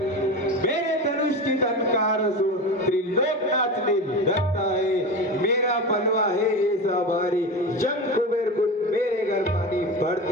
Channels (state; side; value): normal; both; correlation 0.26